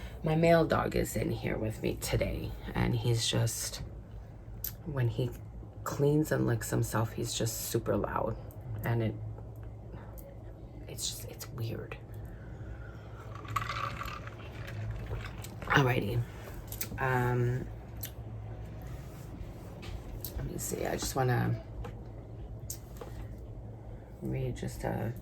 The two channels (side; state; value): both; identical; correlation 1.00